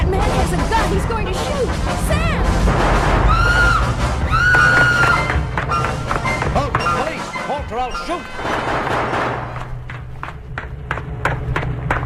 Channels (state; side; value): identical; both; correlation 1.00